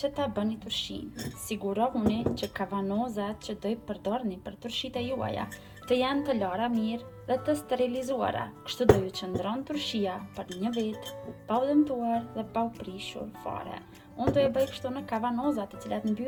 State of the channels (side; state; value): both; identical; correlation 1.00